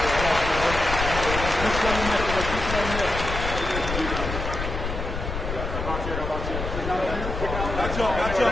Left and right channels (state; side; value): noise; left; rumble, 5 dB below the sound